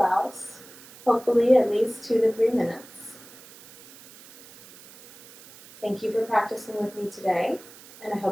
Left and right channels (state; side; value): noise; right; hiss, 21 dB below the sound